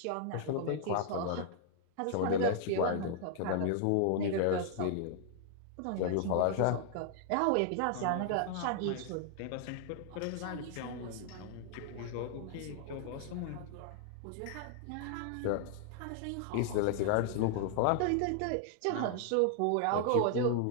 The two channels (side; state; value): both; different; correlation 0.00